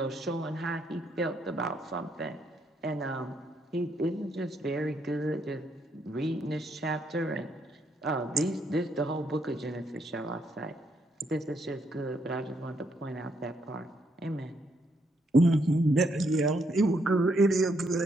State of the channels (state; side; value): normal; both; correlation 0.75